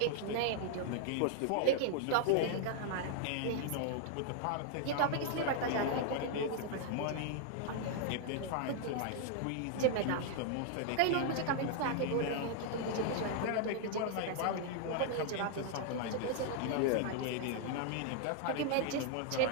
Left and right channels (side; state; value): both; different; correlation -0.01